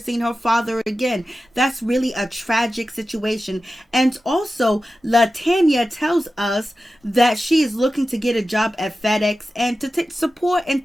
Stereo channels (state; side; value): normal; both; correlation 0.93